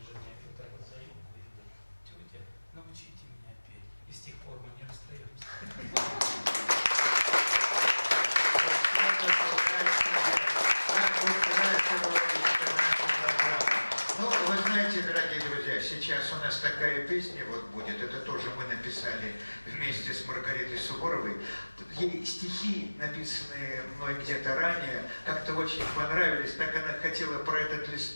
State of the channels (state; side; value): inverted; both; correlation -1.00